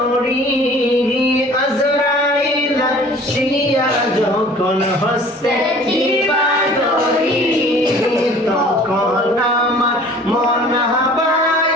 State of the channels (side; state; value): both; normal; correlation 0.49